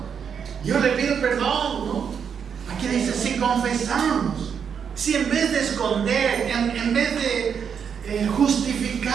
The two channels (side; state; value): left; quieter; 7.2 dB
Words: yo le pido perdón, ¿no? Aquí dice, si confesamos, si en vez de esconder, en vez de